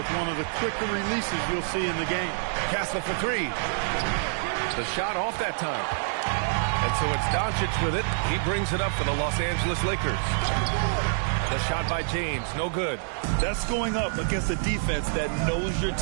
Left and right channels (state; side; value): silent; left; 59 dB below the other